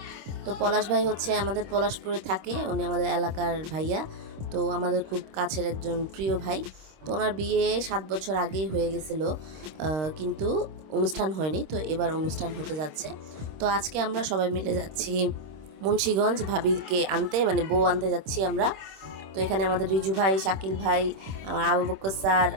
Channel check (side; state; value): left; late; 26 ms